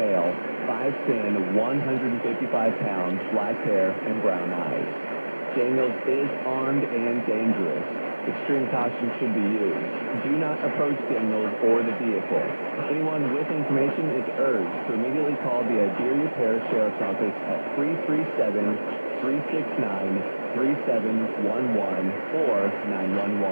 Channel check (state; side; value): inverted; both; correlation -1.00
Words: 5'10", 155 pounds, black hair, and brown eyes. Daniels is armed and dangerous. Extreme caution should be used. Do not approach Daniels or the vehicle. Anyone with information is urged to immediately call the Iberia Parish Sheriff's Office at 337-369-3711 or